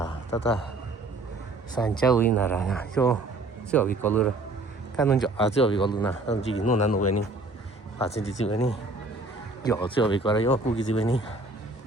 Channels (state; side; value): quieter; left; 3.0 dB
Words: tata. Sancha win na ra. Yo bico lu. Kan no yo bico lu na. Don ji no na no weni. Pa sin ji weni. Yo bico ra yo ku ji weni.